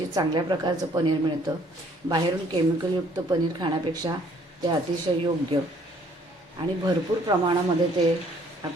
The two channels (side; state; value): both; normal; correlation 0.61